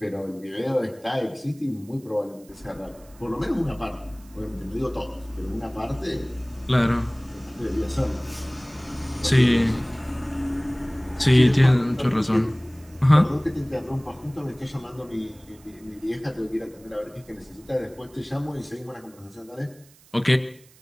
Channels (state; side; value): noise; right; hiss, 27 dB below the sound